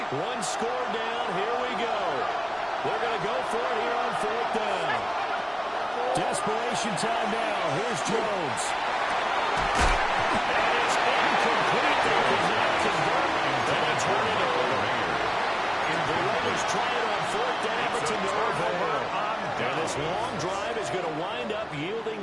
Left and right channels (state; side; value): identical; both; correlation 1.00